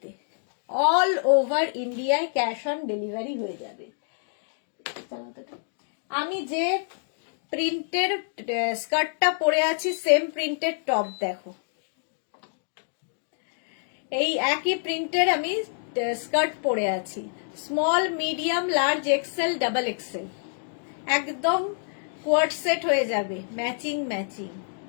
অল ওভার ইন্ডিয়ায় ক্যাশ অন ডেলিভারি হয়ে যাবে। আমি যে প্রিন্টের স্কার্টটা পরে আছি সেম প্রিন্টের টপ দেখো, এই একই প্রিন্টের আমি স্কার্ট পরে আছি, small, medium, large, XL, double XL. একদম কোয়ার্ড সেট হয়ে যাবে, ম্যাচিং ম্যাচিং।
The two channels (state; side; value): silent; right; digital silence